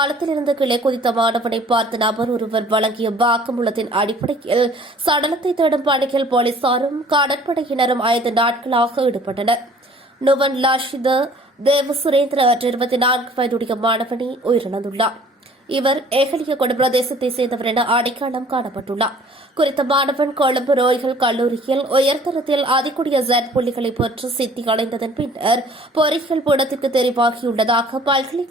இருந்து கீழே குதித்த மாணவனை பார்த்த நபர் ஒருவர் வழங்கிய வாக்குமூலத்தின் அடிப்படையில் சடலத்தை தேடும் பணியில் போலீசாரும் கடற்படையினரும் 5 நாட்களாக ஈடுபட்டனர். நுவன் லாஷித தேவ சுரேந்திர 24 வயதுடைய மாணவனை உயிரிழந்துள்ளார். இவர் ஏகலியகொட பிரதேசத்தைச் சேர்ந்தவர் என அடையாளம் காணப்பட்டுள்ளார். குறித்த மாணவன் கொழும்பு ரோயல் கல்லூரியில் உயர்தரத்தில் அதிகூடிய Z புள்ளிகளை பெற்று சித்தி அடைந்ததன் பின்னர் பொறியியல் பீடத்திற்கு தெரிவாகியுள்ளதாக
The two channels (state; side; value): normal; both; correlation 0.53